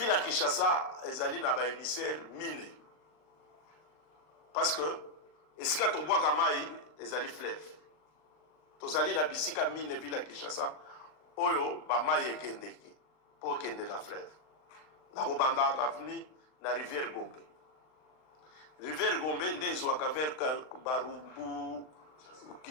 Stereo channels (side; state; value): right; late; 39 ms